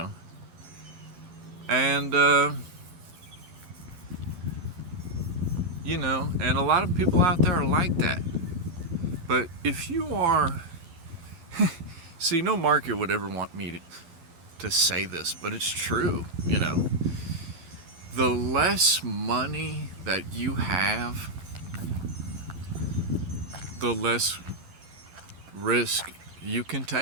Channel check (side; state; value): left; late; 12 ms